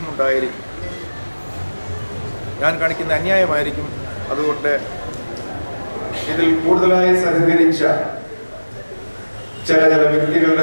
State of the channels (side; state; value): both; inverted; correlation -1.00